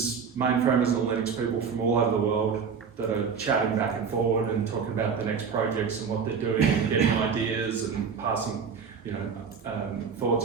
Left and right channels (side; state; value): left; quieter; 6.2 dB